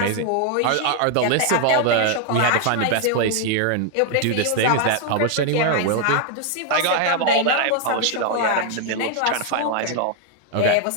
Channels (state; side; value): different; both; correlation 0.00